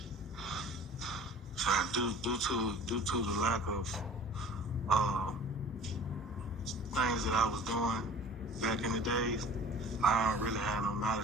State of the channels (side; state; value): both; normal; correlation 0.45